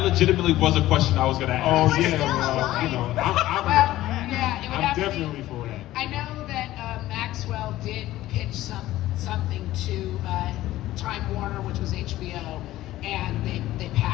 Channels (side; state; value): right; quieter; 15.4 dB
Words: legitimately was a question I was going to Oh ask. We're yeah, still well, alive. you know, Well, yeah, it would I'm have to be. definitely for that. I know that Maxwell did pitch something to Time Warner, which was HBO, and they